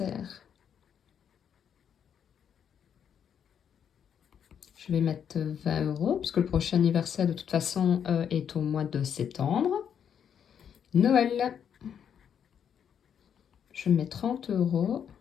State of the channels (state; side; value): quieter; right; 8.2 dB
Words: je vais mettre 20 €, puisque le prochain anniversaire, de toute façon, est au mois de septembre. Noël, je mets 30 €.